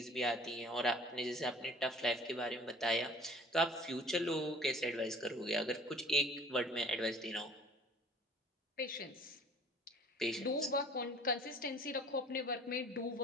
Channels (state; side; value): normal; both; correlation 0.49